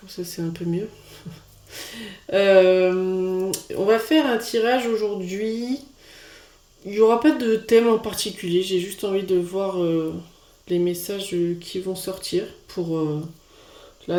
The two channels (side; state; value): both; identical; correlation 1.00